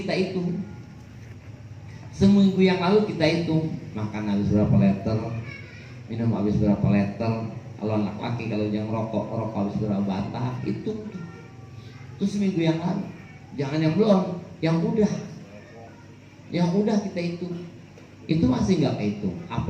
hitung. Seminggu yang lalu kita hitung, makan habis berapa liter, minum habis berapa liter. Kalau anak laki, kalau yang rokok habis berapa batang, hitung. Itu seminggu yang lalu. Jangan yang belum, yang udah. Yang udah kita hitung. Itu masih nggak kehitung,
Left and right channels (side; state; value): both; identical; correlation 1.00